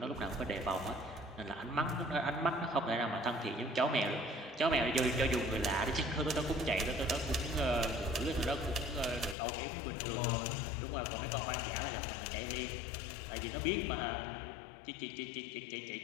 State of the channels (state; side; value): drops out; right; at 9.3 s